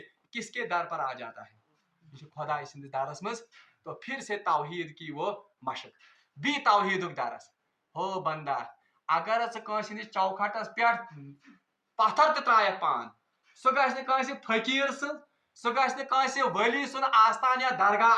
کس کے در پر آ جاتا ہے یہ خدا سندس درس مز تو پھر سے توحید کی وہ مشق بھی توحید درس ہو بندہ اگر ژٕ ہندس چوکھٹس پہ پتھر تہ ترایت پان سہ گژھِ نہٕ کٲنٛسہِ فقیٖر سٕنٛز سہ گژھِ نہٕ کٲنٛسہِ ولی سُنٛد آستان یا درگاہ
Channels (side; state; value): both; identical; correlation 1.00